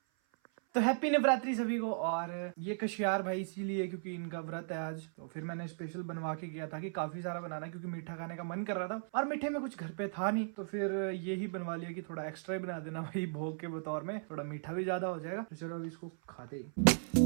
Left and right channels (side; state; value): left; silent; 53 dB below the other